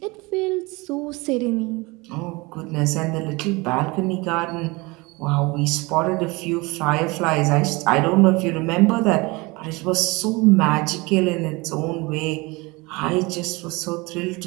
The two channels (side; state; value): left; quieter; 24.7 dB